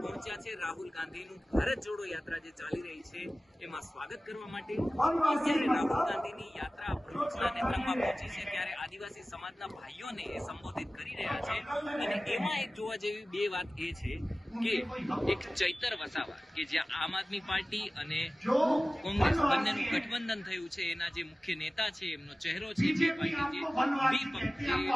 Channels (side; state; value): both; normal; correlation 0.97